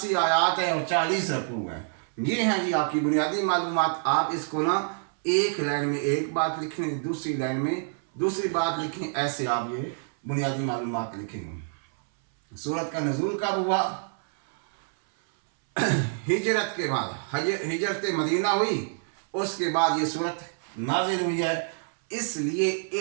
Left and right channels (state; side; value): silent; left; 60 dB below the other